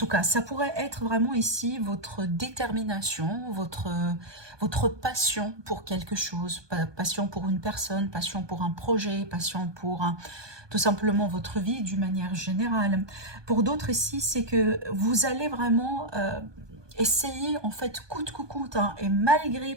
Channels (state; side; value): late; left; 1.2 ms